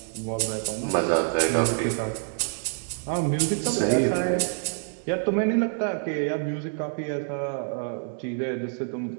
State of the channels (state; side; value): silent; left; 60 dB below the other